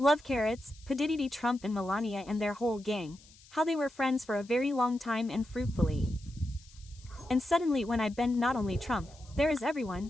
carrots, P. Trump and Melania and their whole gang, how they were friends for a very long time and fruitfully. And suddenly when I bend not only Trump, there is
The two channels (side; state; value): left; noise; hiss, 25 dB below the sound